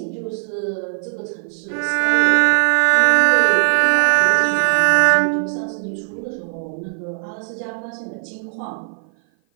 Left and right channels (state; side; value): silent; left; 56 dB below the other